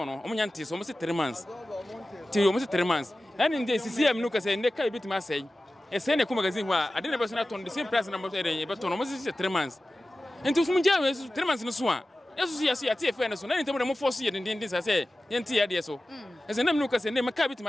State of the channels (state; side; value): normal; both; correlation 0.95